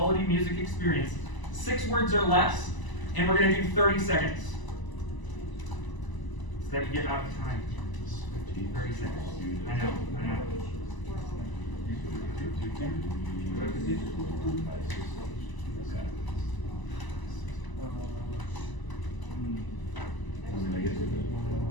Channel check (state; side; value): late; right; 1.0 ms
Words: music experience? 6 words or less, and we're going to do 30 seconds. So that you get out of time. 30 seconds. I know.